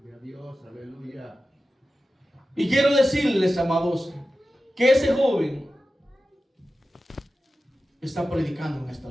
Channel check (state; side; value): normal; both; correlation 0.94